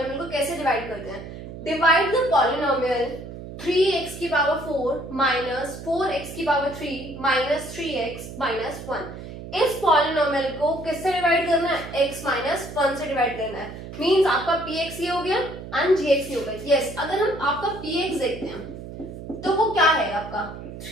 को कैसे डिवाइड करते हैं। डिवाइड द पॉलिनोमियल 3x की पावर 4 माइनस 4x की पावर 3 माइनस 3x माइनस 1। इस पॉलिनोमियल को किससे डिवाइड करना है? x माइनस 1 से डिवाइड करना है। मींस आपका px ये हो गया एंड gx ये हो गया। यस, अगर हम आपका px देखते हैं तो वो क्या है आपका?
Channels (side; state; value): right; noise; hum, 11 dB below the sound